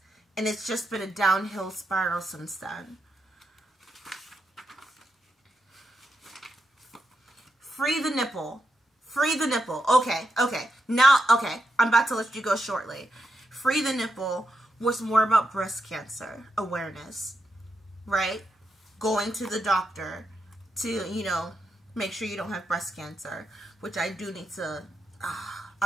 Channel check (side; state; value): both; normal; correlation 0.84